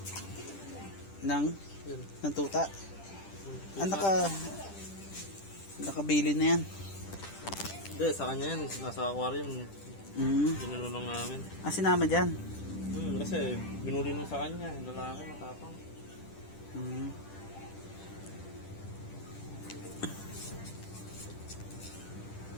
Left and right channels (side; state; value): right; late; 10 ms